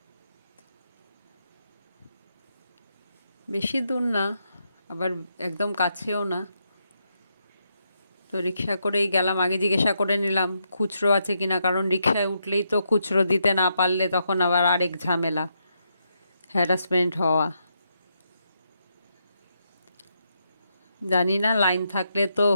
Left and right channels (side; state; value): both; inverted; correlation -0.80